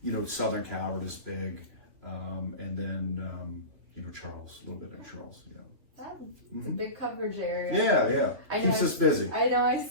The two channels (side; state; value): left; late; 3.0 ms